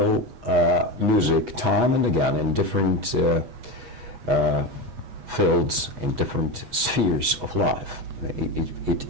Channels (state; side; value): late; left; 8.2 ms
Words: music time and again in different fields, in different spheres of life. It